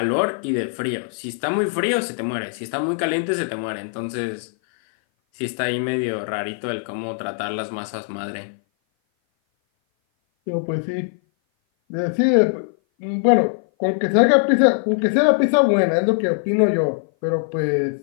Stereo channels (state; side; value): silent; right; 57 dB below the other